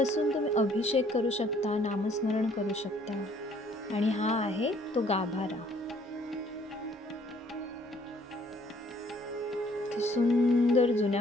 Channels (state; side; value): normal; both; correlation 0.62